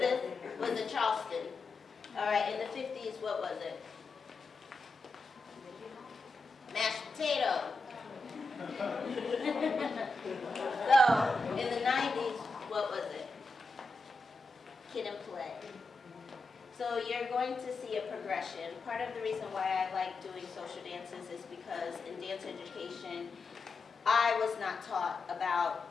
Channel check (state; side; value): quieter; right; 3.5 dB